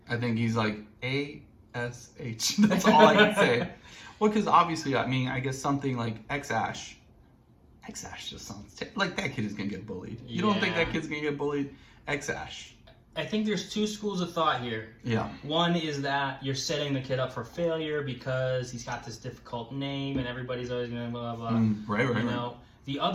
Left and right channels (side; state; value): both; identical; correlation 1.00